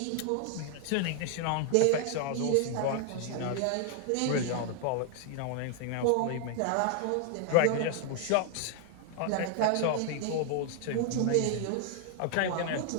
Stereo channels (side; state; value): both; different; correlation 0.00